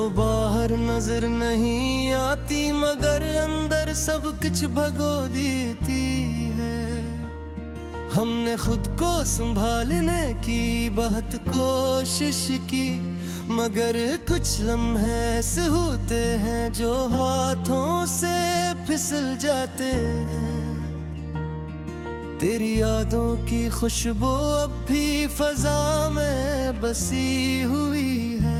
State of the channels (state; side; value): identical; both; correlation 1.00